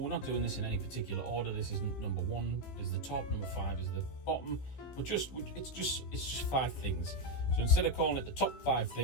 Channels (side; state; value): right; late; 15 ms